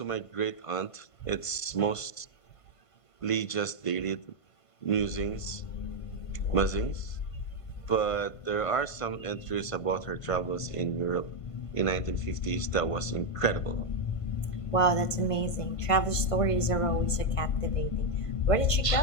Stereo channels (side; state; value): right; late; 1.5 ms